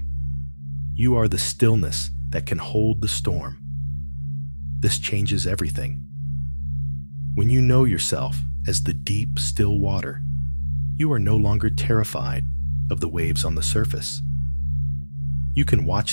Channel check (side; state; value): both; inverted; correlation -1.00